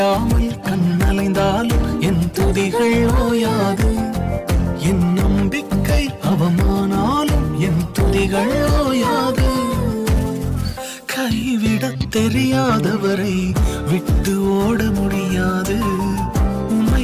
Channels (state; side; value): identical; both; correlation 1.00